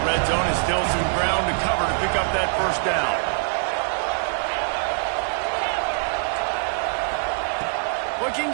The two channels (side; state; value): left; silent; 59 dB below the other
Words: red zone, and still some ground to cover to pick up that 1st down. Looking